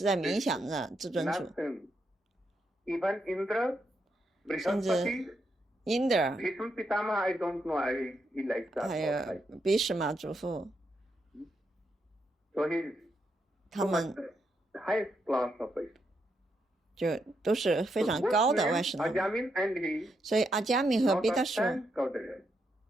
在冥想着至尊主。 Nothing. Even Indra, 甚至 Brihaspati, 因德尔 Bhishma Pitamaha, I don't know he likes that. 还 not 有 like. 比什马祖父， So he is 他 so 们 much highest class of it. 就都是非 So 常 both 高的 names, 外什纳瓦。 Ajamin and he, 所以阿加密和 not 贝达 of 树， time Gaudaya.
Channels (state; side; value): normal; both; correlation 0.81